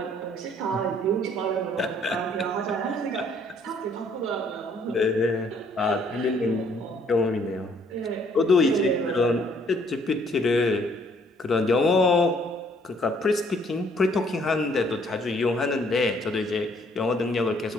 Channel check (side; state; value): both; normal; correlation 0.63